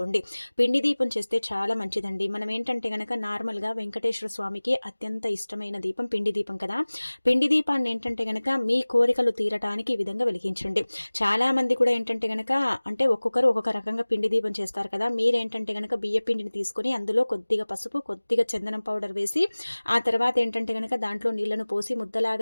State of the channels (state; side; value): inverted; both; correlation -1.00